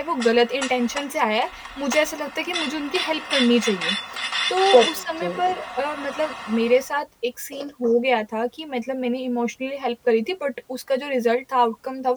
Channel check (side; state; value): both; identical; correlation 1.00